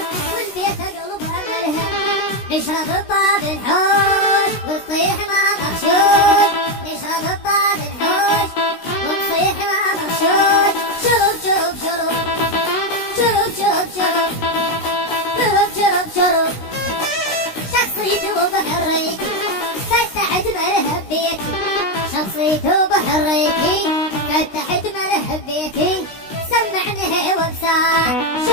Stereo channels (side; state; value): right; late; 16 ms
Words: والبيت قلب املها. نشرب الطاب الحوش ونصيح ما مغشوش، نشرب الطاب الحوش ونصيح ما مغشوش. شرب شرب شرب شرب شرب شرب شرب شرب شرب. شخصيتي وبحريتي فتحت ملهب بيتي، شخصيتي وبحريتي فتحت ملهب بيتي. سمعني وبساع